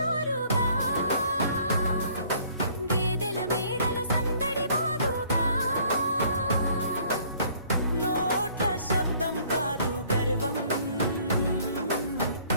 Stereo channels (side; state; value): both; inverted; correlation -0.58